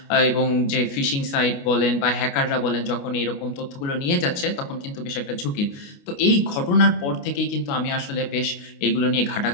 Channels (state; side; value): late; right; 29 ms